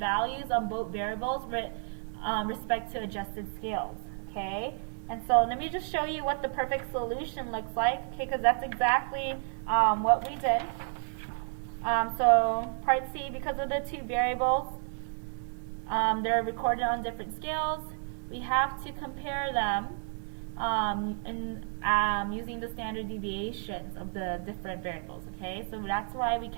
on both variables with respect to adjusted scales. Okay, and so let me just show you what the perfect solution looks like, okay, because that's exactly what we did. So part C, because of the two variables, they're recorded on different scales, we have to compare them using the standard deviations of the different variables, okay? So that's why we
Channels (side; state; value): left; silent; 57 dB below the other